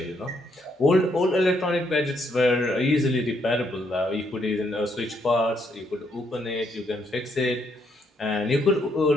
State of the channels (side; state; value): both; normal; correlation 0.74